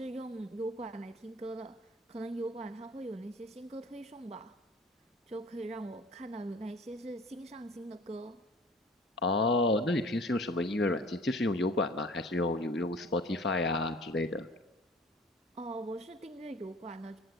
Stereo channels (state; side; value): normal; both; correlation 0.46